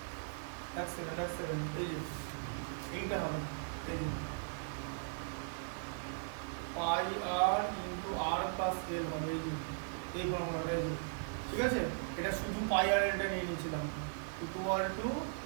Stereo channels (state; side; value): silent; left; digital silence